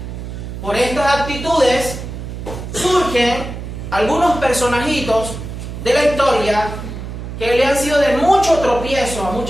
Por estas actitudes surgen algunos personajitos de la historia que le han sido de mucho tropiezo a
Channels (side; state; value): right; noise; hum, 8 dB below the sound